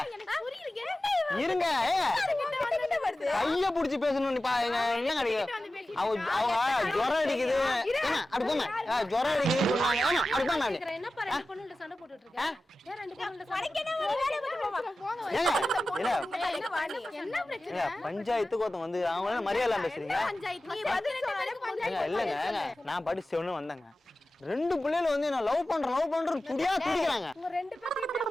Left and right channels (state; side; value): normal; both; correlation 0.94